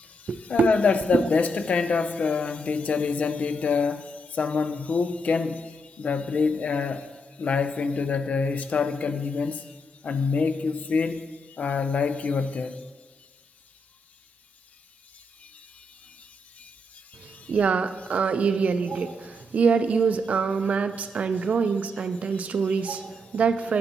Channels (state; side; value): normal; both; correlation 0.79